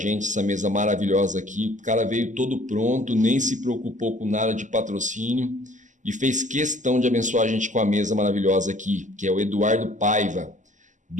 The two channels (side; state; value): left; late; 0.36 ms